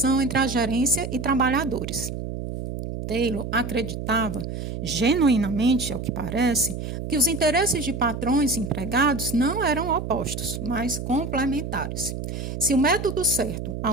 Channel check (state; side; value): noise; right; hum, 6 dB below the sound